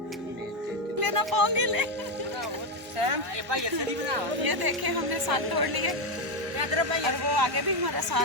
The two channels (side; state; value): both; normal; correlation 0.08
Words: लेना पाओगे ले। ये देखे हमने साग तोड़ लिए और वो आगे भी हमारा